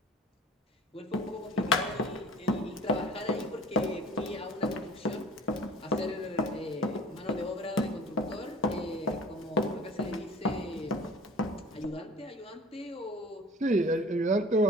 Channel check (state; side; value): normal; both; correlation 0.46